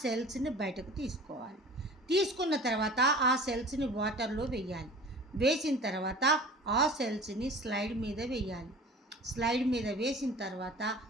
బయటకు తీసుకోవాలి. తీసుకున్న తర్వాత ఆ సెల్స్ని వాటర్లో వేయాలి. వేసిన తర్వాత ఆ సెల్స్ని స్లైడ్ మీద వేయాలి. స్లైడ్ మీద వేసిన తర్వాత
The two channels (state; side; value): normal; both; correlation 0.41